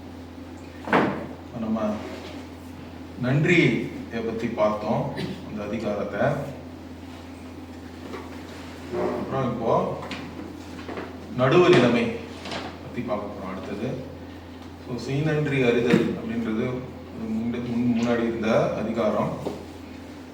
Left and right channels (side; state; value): both; identical; correlation 1.00